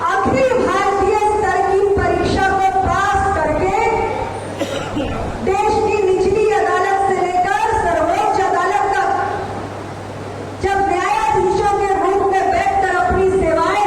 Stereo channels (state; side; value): identical; both; correlation 1.00